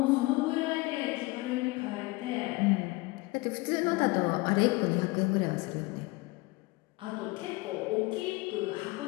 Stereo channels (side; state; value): right; quieter; 23.3 dB